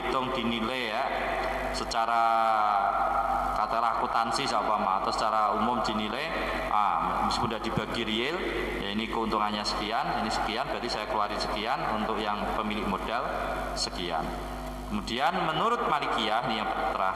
dinilai ya, secara katakanlah akuntansi atau secara umum dinilai sama, meskipun sudah dibagi real, ya ini keuntungannya sekian, ini sekian, berarti saya keluarin sekian, untuk yang pemilik modal sekian. Kemudian menurut Malikiyah, ini yang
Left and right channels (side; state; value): both; identical; correlation 1.00